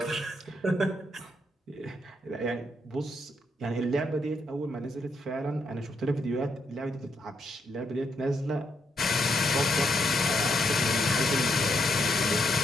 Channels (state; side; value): normal; both; correlation 0.77